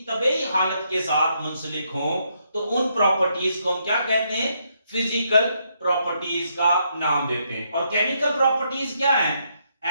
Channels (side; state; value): both; inverted; correlation -0.76